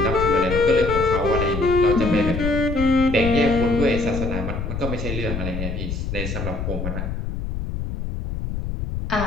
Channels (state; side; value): noise; left; rumble, 4 dB below the sound